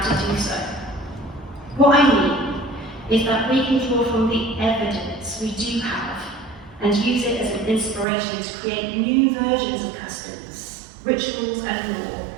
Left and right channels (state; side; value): drops out; left; at 8.1 s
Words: do so. What I mean is that we can draw from the evidence we do have and use it as an inspiration to create new versions of customs, rituals and law